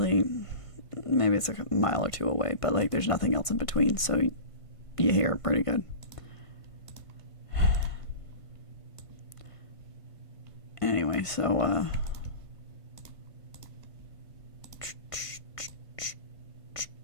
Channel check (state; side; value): late; right; 1.5 ms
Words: maybe it's like a mile or two away, but, like, there's nothing else in between, so you hear it pretty good. Anyway, so